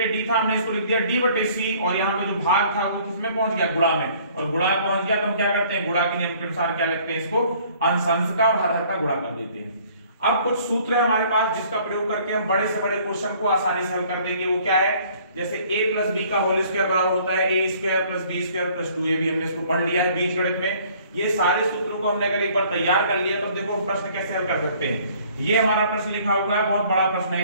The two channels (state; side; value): inverted; both; correlation -0.57